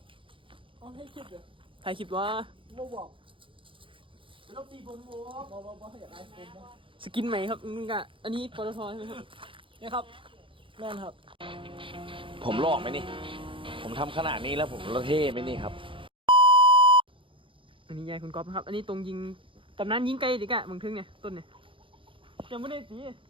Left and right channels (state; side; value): late; left; 0.25 ms